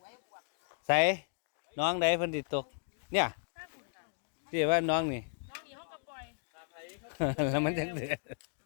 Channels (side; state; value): right; silent; digital silence